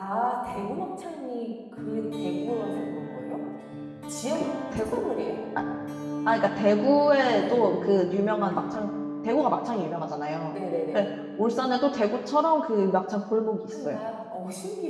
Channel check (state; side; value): identical; both; correlation 1.00